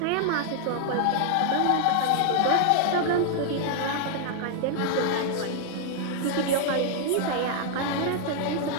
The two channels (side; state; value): both; different; correlation 0.00